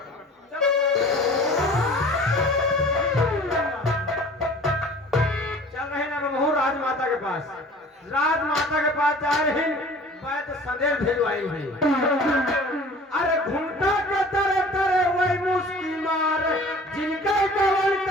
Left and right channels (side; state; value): both; normal; correlation 0.46